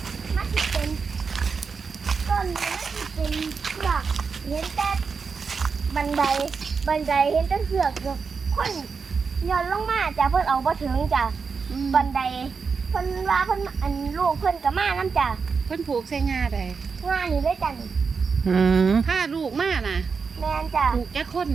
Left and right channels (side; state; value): left; quieter; 5.3 dB